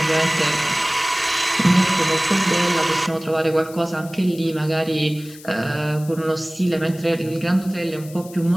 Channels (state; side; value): noise; left; hiss, 19 dB below the sound